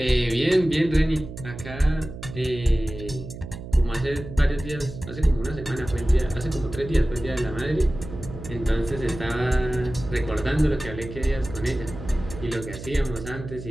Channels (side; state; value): right; noise; hum, 11 dB below the sound